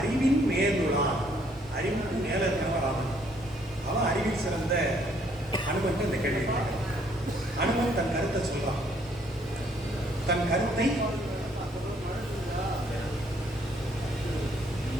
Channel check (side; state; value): both; normal; correlation 0.66